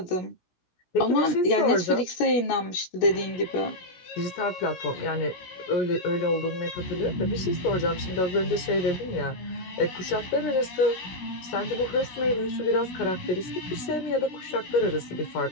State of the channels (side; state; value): right; late; 16 ms